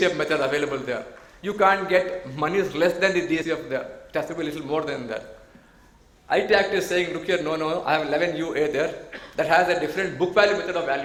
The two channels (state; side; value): identical; both; correlation 1.00